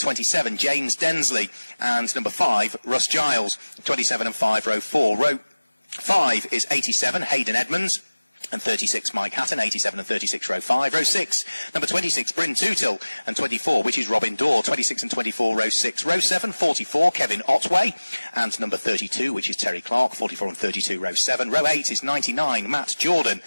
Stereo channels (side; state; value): both; inverted; correlation -1.00